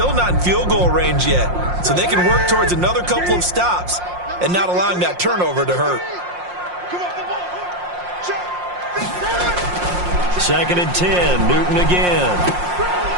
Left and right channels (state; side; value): late; left; 5.6 ms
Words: not in field goal range yet. So they can work towards another couple of stops and not allowing that turnover to hurt. 2nd and 10, Newton again.